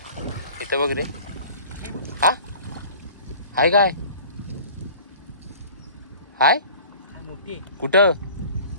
इथं बघ रे. हा हाय काय हाय कुठं.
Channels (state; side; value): inverted; both; correlation -0.45